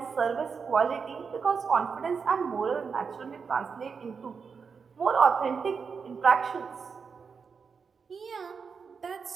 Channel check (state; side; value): quieter; left; 5.7 dB